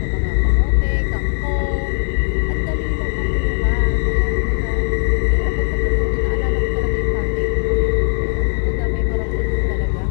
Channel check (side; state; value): right; silent; digital silence